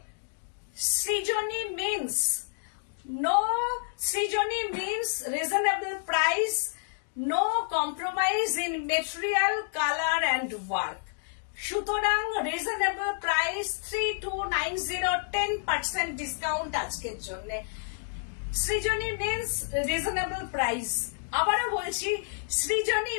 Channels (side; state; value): right; silent; digital silence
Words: Srijani means, no Srijani means reasonable price, no compromise in material, colour and work. সুতরাং রিজনেবল প্রাইস 3290, 10% ডিসকাউন্ট আজকের জন্য। সৃজনী মিন্স রিজনেবল প্রাইস, আবারও বলছি Srijani